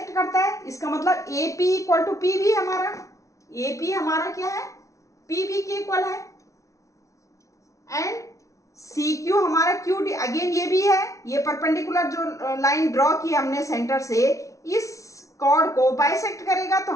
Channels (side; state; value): right; late; 0.15 ms